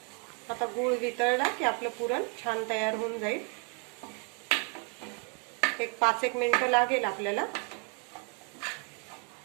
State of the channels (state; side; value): quieter; left; 35.7 dB